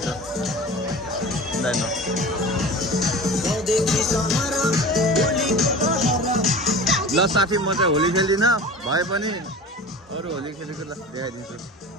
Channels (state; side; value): normal; both; correlation 0.36